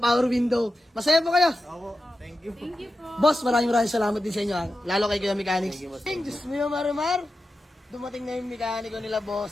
window. Masaya po kayo? Opo, thank you. Thank you po. Boss, maraming salamat din sa inyo. Lalo kay Kuya Mechanics. Diyos mo yung Marimar. Dumating na yung mekaniko nila,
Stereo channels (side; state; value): both; normal; correlation 0.92